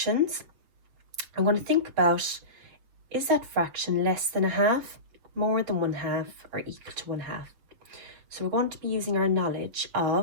I'm going to think about, is that fraction less than 1/2, more than 1/2, or equal to 1/2? So we're going to be using our knowledge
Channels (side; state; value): left; late; 6.9 ms